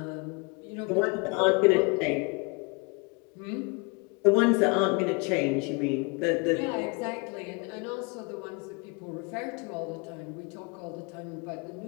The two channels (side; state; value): right; quieter; 31.6 dB